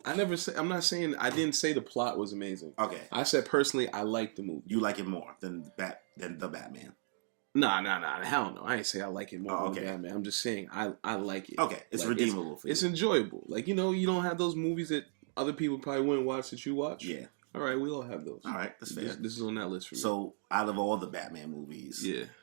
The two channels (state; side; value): silent; left; digital silence